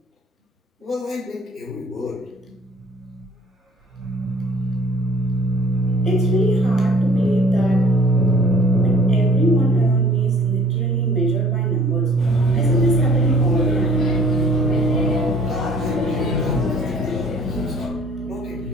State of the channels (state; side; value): normal; both; correlation 0.53